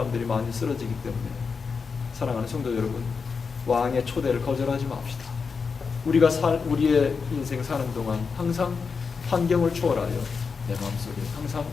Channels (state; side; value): quieter; right; 5.3 dB